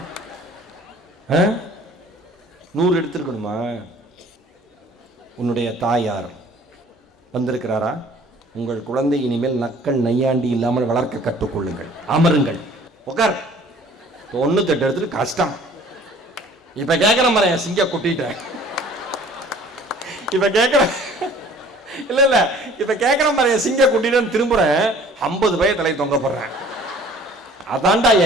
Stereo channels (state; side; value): normal; both; correlation 0.52